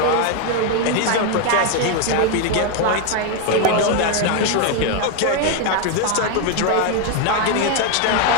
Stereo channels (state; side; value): different; both; correlation 0.01